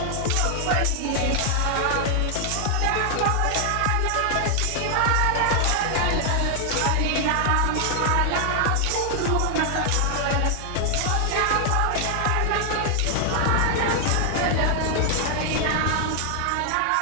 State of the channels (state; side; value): different; both; correlation 0.00